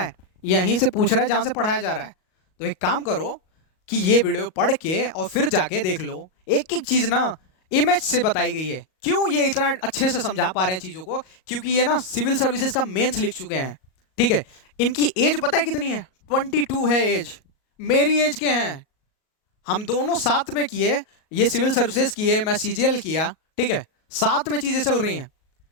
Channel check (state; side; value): late; right; 38 ms